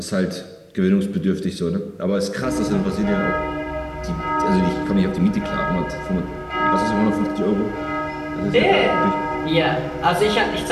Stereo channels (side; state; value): both; identical; correlation 1.00